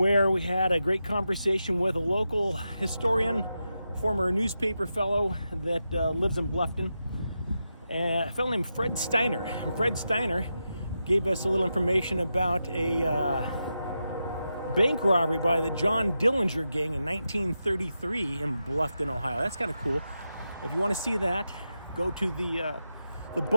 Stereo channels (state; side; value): inverted; both; correlation -0.88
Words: we had a great conversation with a local historian, former newspaper fellow that lives in Bluffton, a fellow named Fred Steiner. And Fred Steiner gave us a little information about a bank robbery by the John Dillinger gang in 1933 in Bluffton, Ohio. That's kind of cool. If you want to see that, go to the